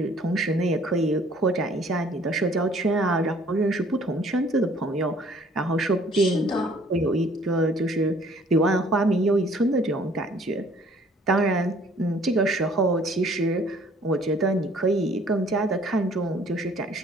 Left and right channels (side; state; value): both; normal; correlation 0.57